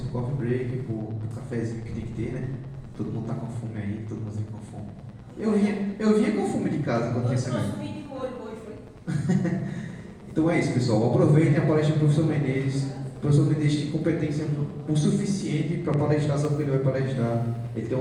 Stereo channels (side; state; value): both; identical; correlation 1.00